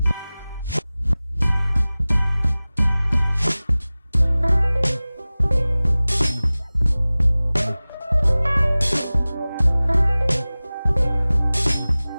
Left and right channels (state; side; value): inverted; both; correlation -0.98